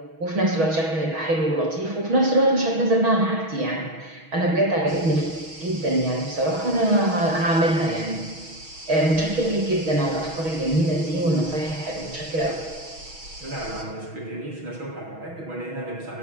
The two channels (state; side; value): late; left; 6.2 ms